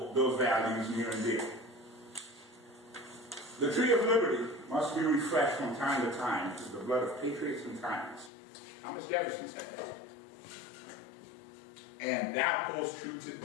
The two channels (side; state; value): right; drops out; at 8.3 s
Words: those values near and dear. The tree of liberty must be refreshed from time to time through the blood of patriots and tyrants. Thomas Jefferson said that. And that holds true